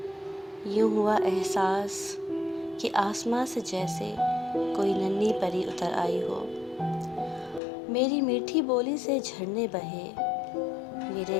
یوں ہوا احساس کہ آسماں سے جیسے کوئی ننھی پری اتر آئی ہو۔ میری میٹھی بولی سے جھرنے بہے،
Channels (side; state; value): right; drops out; at 7.6 s